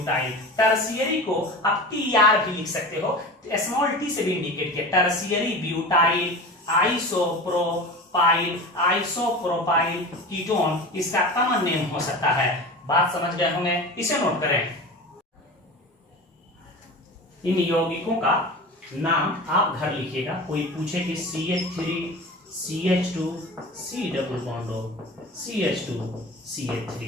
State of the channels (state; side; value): normal; both; correlation 0.32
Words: टर्शियरी को आप TR भी लिख सकते हो, स्मॉल t से भी इंडिकेट किया, टर्शियरी ब्यूटाइल आइसोप्रोपाइल कीटोन इसका कॉमन नेम हो सकता है। बात समझ गए होंगे, इसे नोट करें। इन यौगिकों का नाम आप घर लिखिएगा। कोई पूछे कि CH3 CH2 C double bond CH2 CH3,